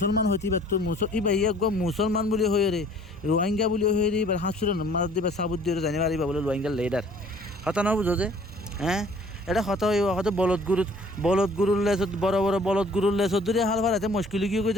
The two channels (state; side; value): normal; both; correlation 0.54